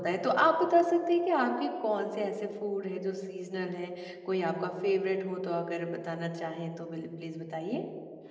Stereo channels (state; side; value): identical; both; correlation 1.00